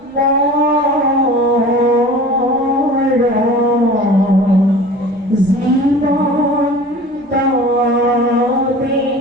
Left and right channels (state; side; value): normal; both; correlation 0.40